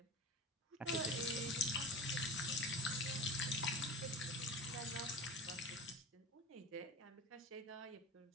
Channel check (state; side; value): normal; both; correlation 0.32